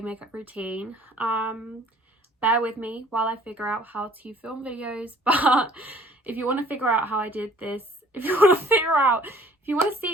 makeup routine. Bear with me while I figure out how to film videos, but if you want to figure out how I did this, if you want to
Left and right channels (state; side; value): normal; both; correlation 0.55